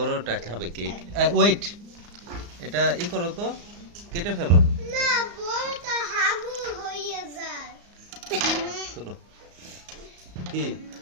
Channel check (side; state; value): left; late; 34 ms